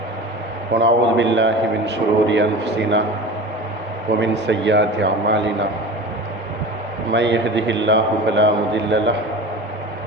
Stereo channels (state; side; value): normal; both; correlation 0.33